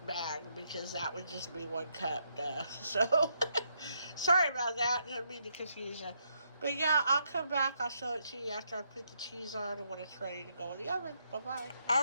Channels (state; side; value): inverted; both; correlation -0.77